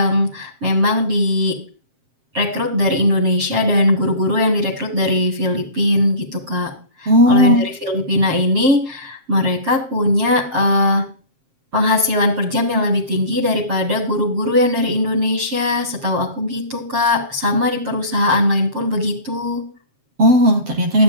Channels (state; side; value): late; left; 7.5 ms